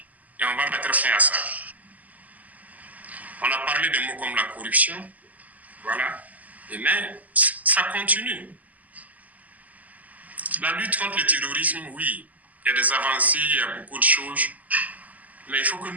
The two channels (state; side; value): late; left; 0.078 ms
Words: et on va mettre fin à ça. On a parlé de mots comme la corruption, voilà, mais ça continue. La lutte contre le terrorisme, oui, il y a des avancées, il y a beaucoup de choses, mais il faut que